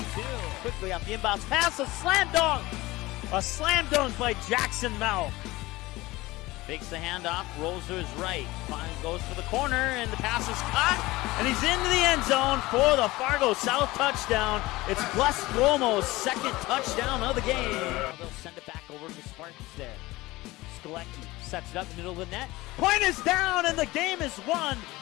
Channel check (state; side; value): quieter; right; 19.7 dB